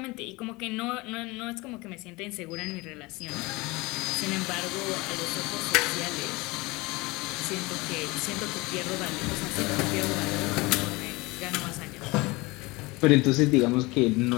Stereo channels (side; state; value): right; quieter; 23.5 dB